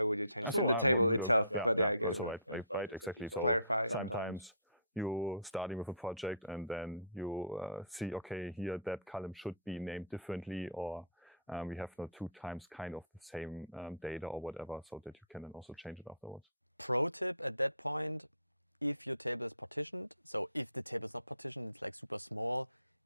would you change So the table itself? Yeah, but yeah, I guess also right, exactly. So clarify. sometimes you starting with a project and then you see, okay, here that column should be named differently, or we have now 2 times kind of the same data or whatever, so that you can then also change it afterwards. Pro tip at that point, if your table is partitioned, so if the table is not partitioned, it's like super small,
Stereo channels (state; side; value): inverted; both; correlation -0.49